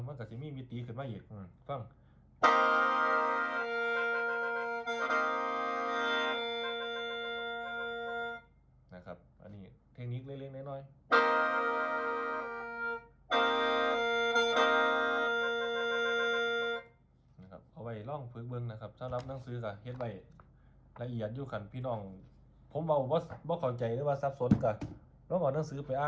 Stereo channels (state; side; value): identical; both; correlation 1.00